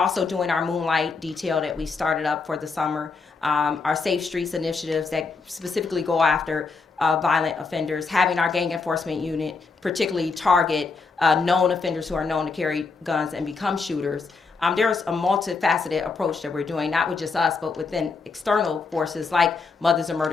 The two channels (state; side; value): quieter; right; 4.5 dB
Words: doing our moonlight detail that we started up for the summer, our Safe Streets initiatives that specifically go after violent offenders, having our gang enforcement unit particularly target known offenders who are known to carry guns and become shooters. There's a multifaceted approach that we're doing, not with just us, but within external forces like Mothers of